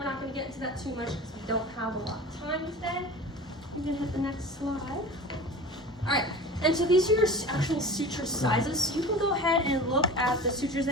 not going to get into that too much because we don't have a lot of time today. You can hit the next slide. Alright, and so these are your actual suture sizes. So you can go ahead and look at the sutures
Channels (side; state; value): both; normal; correlation 0.35